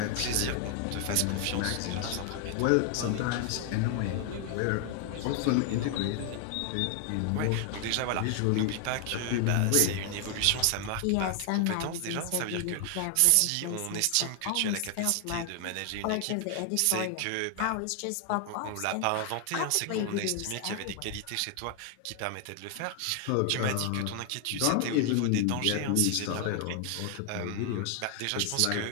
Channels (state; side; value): different; both; correlation 0.00